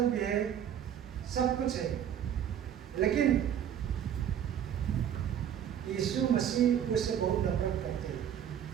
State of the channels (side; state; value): left; quieter; 9.5 dB